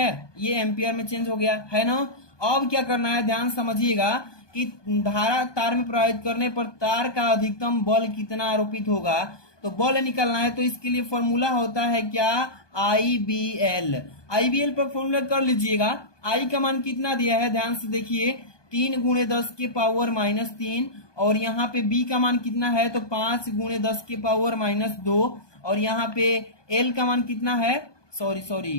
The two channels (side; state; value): right; late; 1.2 ms